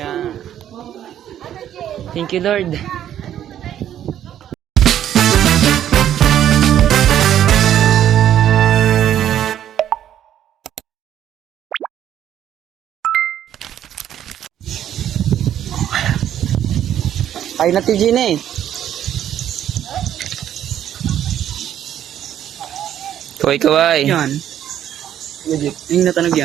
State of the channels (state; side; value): quieter; left; 10.8 dB